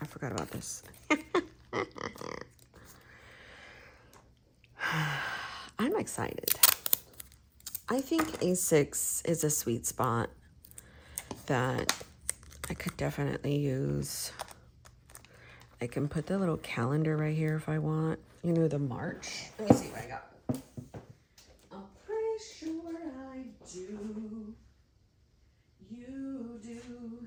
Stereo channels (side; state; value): both; identical; correlation 1.00